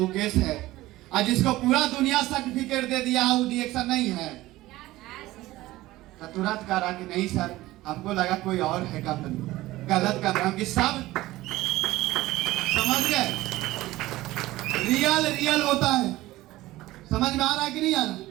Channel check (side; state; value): left; quieter; 17.3 dB